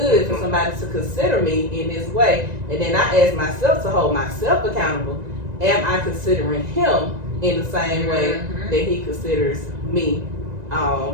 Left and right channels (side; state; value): left; late; 1.9 ms